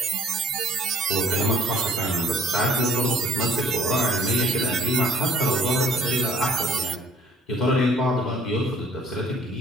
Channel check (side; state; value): both; normal; correlation 0.56